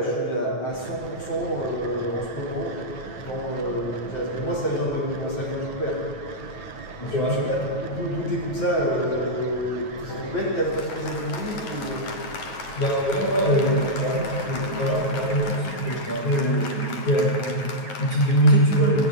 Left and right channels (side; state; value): right; late; 9.2 ms